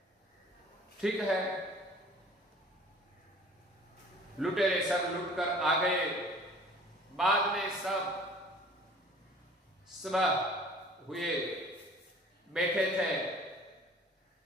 ठीक है। लुटेरे सब लुट कर आ गए। बाद में सब सुबह हुए बैठे थे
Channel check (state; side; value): normal; both; correlation 0.48